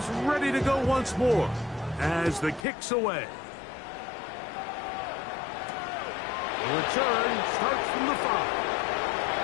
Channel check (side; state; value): right; drops out; at 2.7 s